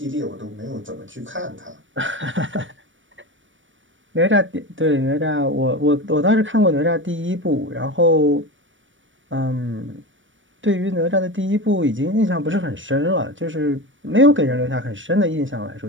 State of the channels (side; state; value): left; late; 0.56 ms